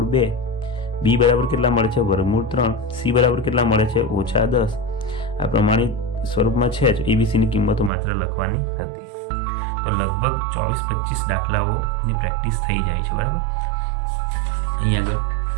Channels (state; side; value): drops out; left; at 7.9 s